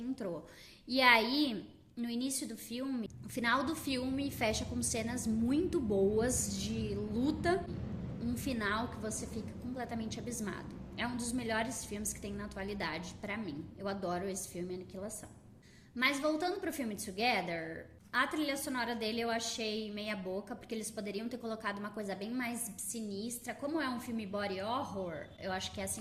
E aí, no início do filme, o final do filme fecha com cenas muito boas de luta, um final que você fica completamente abismado. É um dos melhores filmes que tem na atualidade pra mim. Eu adoro esse filme, Aniquilação. Mas voltando pro filme Together, a trilha sonora dele eu achei meia boca, porque eles poderiam ter colocado uma coisa bem mais sinistra. Como é um filme body horror, eu acho que é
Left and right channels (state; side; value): identical; both; correlation 1.00